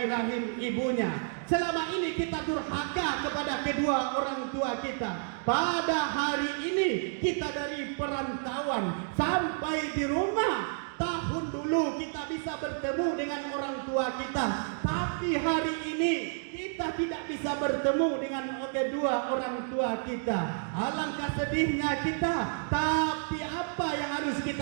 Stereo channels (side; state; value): left; silent; digital silence